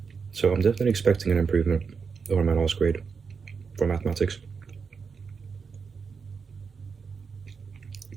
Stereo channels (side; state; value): left; quieter; 5.5 dB